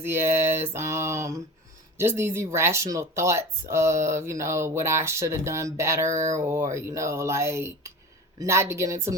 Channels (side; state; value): both; normal; correlation 0.33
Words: ass, just these irrational thoughts of, what I should have done better, or, like, not to get into